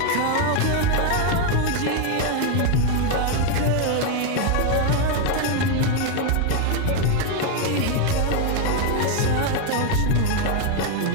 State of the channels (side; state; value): both; different; correlation 0.01